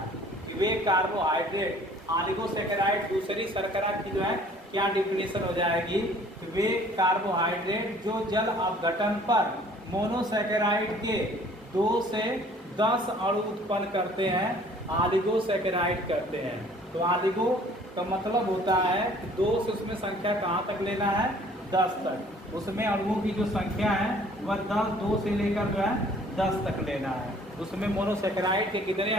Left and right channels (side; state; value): both; normal; correlation 0.54